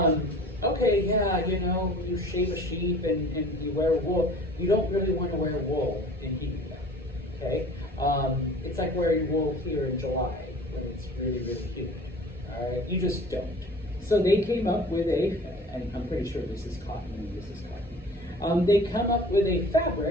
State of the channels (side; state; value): both; normal; correlation 0.45